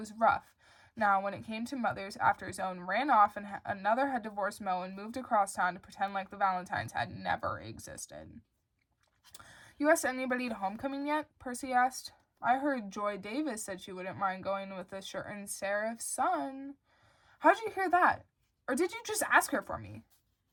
rough. Now, when it came to mothers, after his own ran off and another had divorced Mo and moved across town to pretend like the Valentines had never existed. You asked anybody to homecoming yet? Percy asked. I heard Joy Davis said she wouldn't mind going with a certain Seraph's son. How'd you hear that? Or did you just ask her for me?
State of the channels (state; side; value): identical; both; correlation 1.00